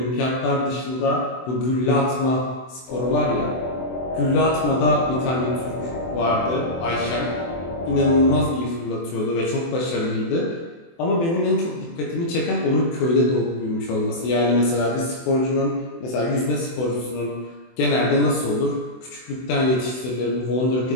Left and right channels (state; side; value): late; right; 24 ms